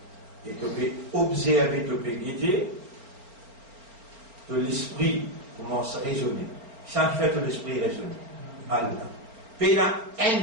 et tu peux observer, tu peux guider, de l'esprit commence à raisonner. C'est ça qui fait que l'esprit raisonne. Allah. Puis la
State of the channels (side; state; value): left; late; 4.3 ms